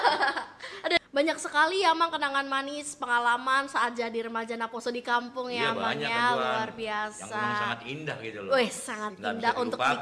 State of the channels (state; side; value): identical; both; correlation 1.00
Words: Aduh, banyak sekali ya Mang kenangan manis, pengalaman saat jadi remaja Naposo di kampung ya Mang banyak, ya, Tuan. luar biasa. Yang memang sangat indah gitu loh. Wih, sangat Nggak indah bisa untuk dilupakan.